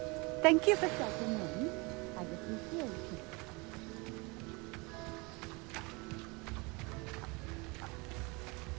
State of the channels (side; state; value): left; quieter; 27.4 dB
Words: Thank you for stepping in. I appreciate it.